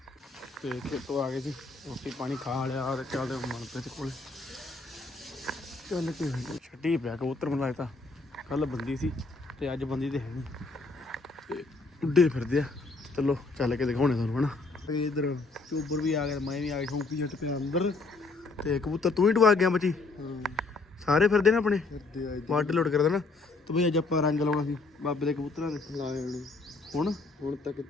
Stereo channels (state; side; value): quieter; right; 3.7 dB